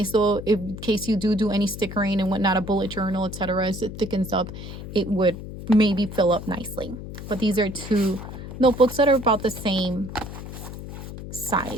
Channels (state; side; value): noise; left; hum, 10 dB below the sound